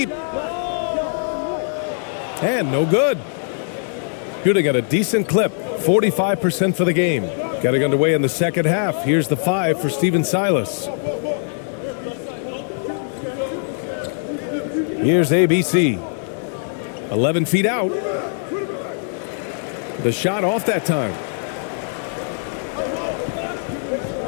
And no good. Shooting at a decent clip. 45% for the game. Getting underway in the second half. Here's the 5 for Steven Silas. Here's ABC. 11 feet out. The shot off that time.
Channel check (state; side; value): silent; right; digital silence